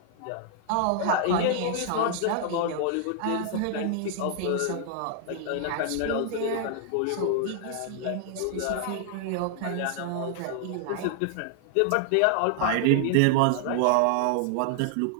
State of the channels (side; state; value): both; different; correlation 0.00